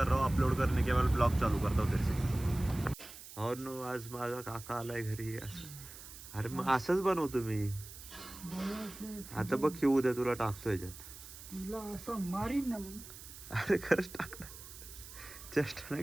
रहा हूँ, अपलोड करने के बाद ब्लॉग चालू करता हूँ फिर से। और नो, आज माझा काका आलाय घरी असं. अरे मग असंच बनवतो मी. आता बघ की उद्या तुला टाकतो याच्यात. तुला असं मारीन ना मग. अरे खरंच टाक ना, चेष्टा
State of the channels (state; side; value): noise; right; hiss, 15 dB below the sound